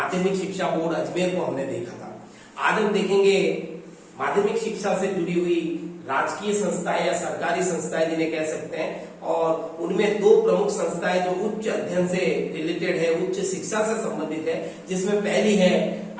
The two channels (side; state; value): both; identical; correlation 1.00